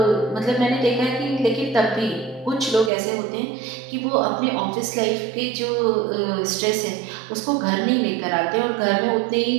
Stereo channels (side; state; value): left; drops out; at 2.9 s